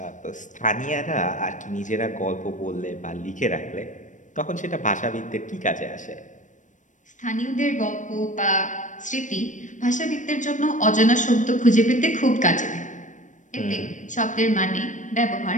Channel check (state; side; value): late; right; 0.37 ms